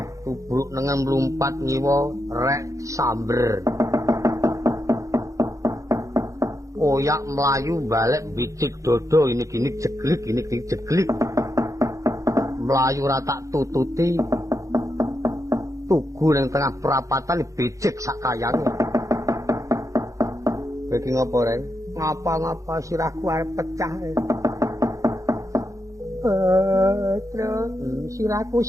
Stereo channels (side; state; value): left; late; 0.15 ms